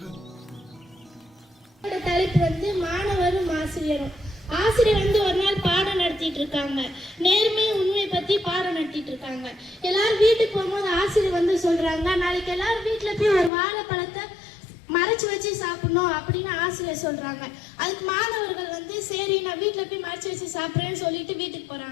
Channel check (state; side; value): drops out; right; at 13.5 s